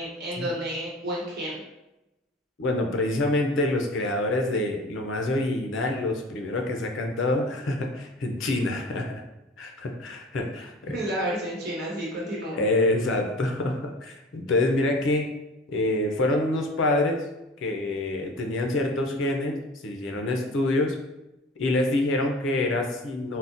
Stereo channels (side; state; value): both; normal; correlation 0.40